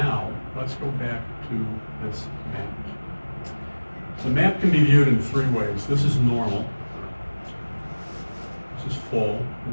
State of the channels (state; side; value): inverted; both; correlation -1.00